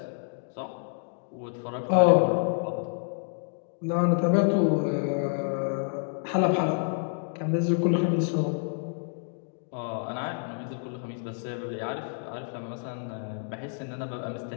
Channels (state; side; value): silent; right; 59 dB below the other